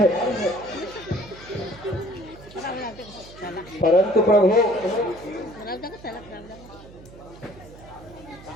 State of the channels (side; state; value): right; noise; hum, 19 dB below the sound